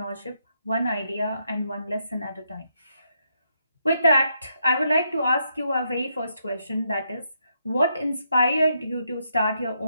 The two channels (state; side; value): inverted; both; correlation -0.78